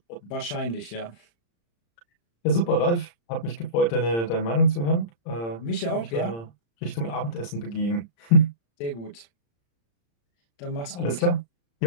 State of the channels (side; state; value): right; late; 35 ms